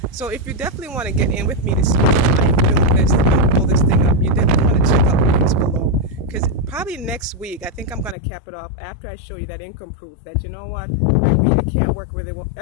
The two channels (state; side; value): drops out; right; at 8.2 s